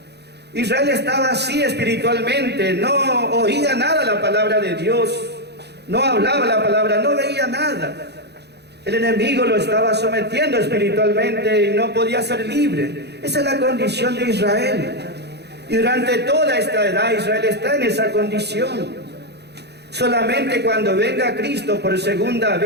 Israel estaba así espiritualmente, no oía nada la palabra de Dios, no hablaba la palabra, no veía nada. El enemigo lo estaba sometiendo espiritualmente y no podía ser libre. Esa es la condición de Israel. Y durante toda esta edad Israel está en esa condición. Solamente cuando venga Cristo por segunda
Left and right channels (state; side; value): late; left; 0.49 ms